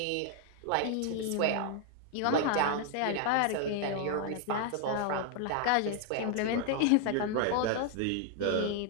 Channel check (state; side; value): different; both; correlation 0.00